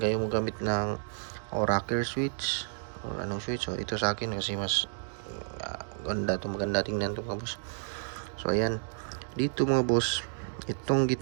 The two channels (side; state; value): left; silent; digital silence